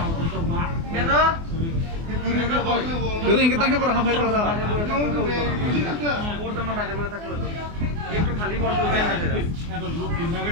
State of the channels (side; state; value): left; late; 24 ms